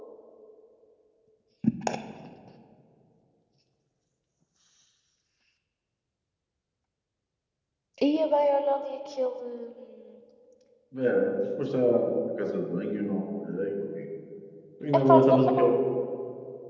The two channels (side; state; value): both; identical; correlation 1.00